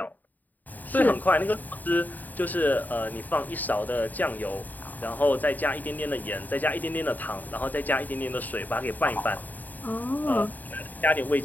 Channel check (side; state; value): right; late; 0.084 ms